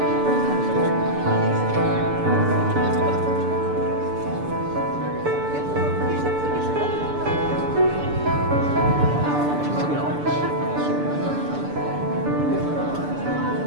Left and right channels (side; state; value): left; late; 6.8 ms